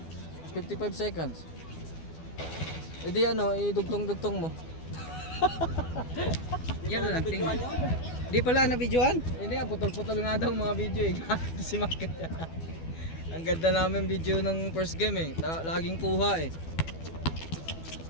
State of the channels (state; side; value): late; right; 12 ms